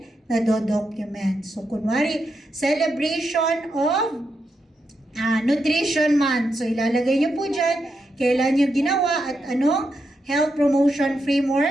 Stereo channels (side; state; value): both; normal; correlation 0.84